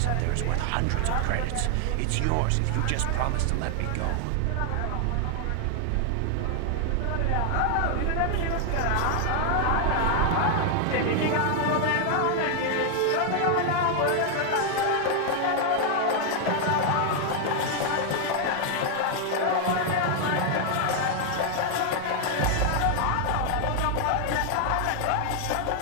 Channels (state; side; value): different; both; correlation 0.00